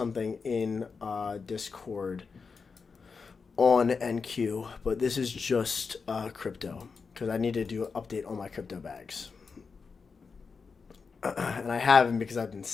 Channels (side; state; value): right; quieter; 5.1 dB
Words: in Discord on NQ, but this is just crypto because I need to do an update on my crypto bags. And I haven't because I've been